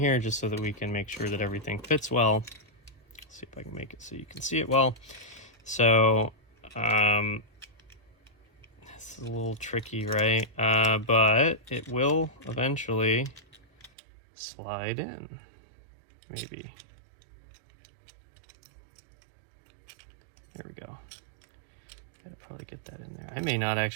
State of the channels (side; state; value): left; drops out; at 13.9 s